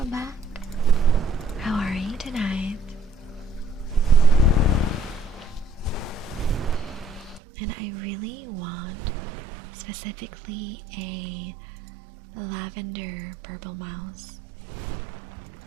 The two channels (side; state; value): left; drops out; at 7.4 s